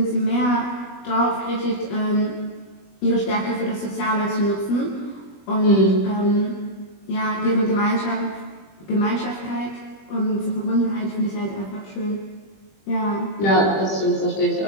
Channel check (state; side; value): late; right; 20 ms